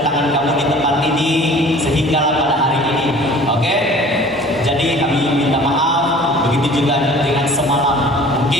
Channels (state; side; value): normal; both; correlation 0.47